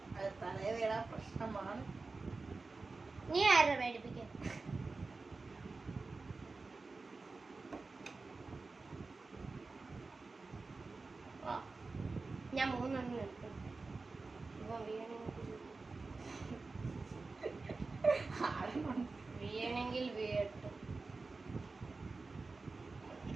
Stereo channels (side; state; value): left; quieter; 3.8 dB